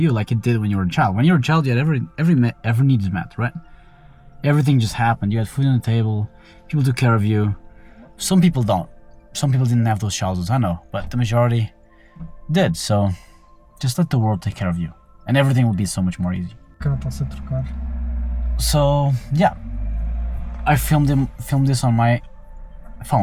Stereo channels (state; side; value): identical; both; correlation 1.00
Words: like it did when you were a child. When you were a child, you had every need is met, right? Everything just happened. You had food on the table, people took care of you. Some people don't. Some people didn't have those childhoods, I know, but the majority did. So just let the world take care of you and everything will be so much more easy. So yeah, I filmed this on my